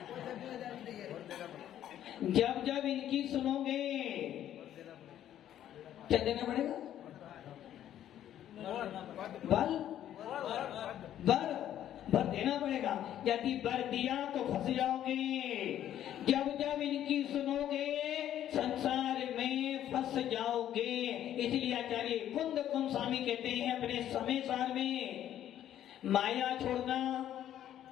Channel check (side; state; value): right; quieter; 11.3 dB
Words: जब जब इनकी सुनोगे क्या देना पड़ेगा, बल बर देना पड़ेगा। यदि बर दिया तो फंस जाओगे। जब जब इनकी सुनोगे संसार में फंस जाओगे। इसलिए आचार्य कुंद स्वामी कहते हैं अपने समय सार में, माया छोड़ना